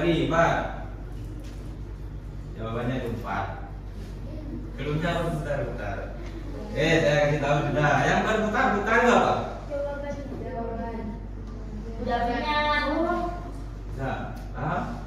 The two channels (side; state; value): both; identical; correlation 1.00